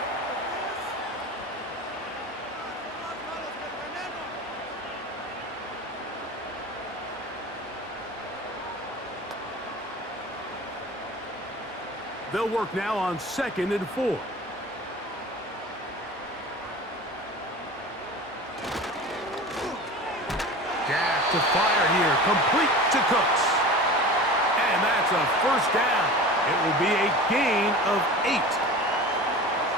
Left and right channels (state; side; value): normal; both; correlation 0.35